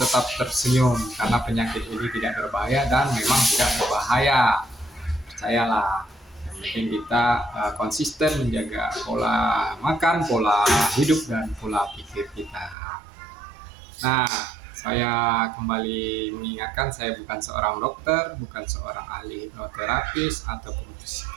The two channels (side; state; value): left; drops out; at 12.8 s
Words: tersenyum karena penyakit ini tidak berbahaya dan memang tidak berbahaya. Percayalah, yang penting kita konsisten menjaga pola makan, pola hidup, dan pola pikir kita. Nah, saya kembali mengingatkan, saya bukan seorang dokter, bukan seorang ahli hipnoterapis ataupun